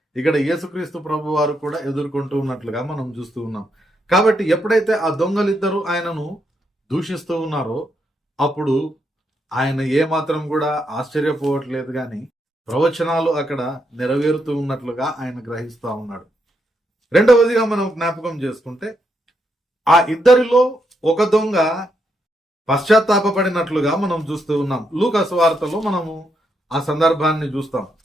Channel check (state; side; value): normal; both; correlation 0.80